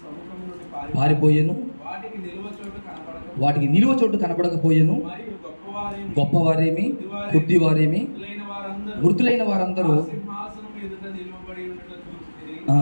సముఖము నుండి పారిపోయెను, వాటికి నిలువ చోటు కనపడకపోయెను. మరియు గొప్పవారేమి కొద్దివారేమి మృతులైన వారందరూ సింహాసనం ఎదుట నిలువబడి ఉన్నట్లు చూచితిని.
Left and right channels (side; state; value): both; inverted; correlation -1.00